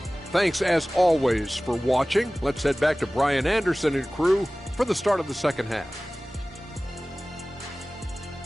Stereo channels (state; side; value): normal; both; correlation 0.98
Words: Thanks, as always, for watching. Let's head back to Brian Anderson and crew for the start of the second half.